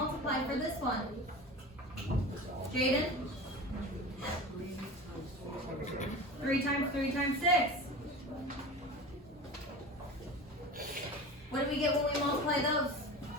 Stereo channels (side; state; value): both; normal; correlation 0.32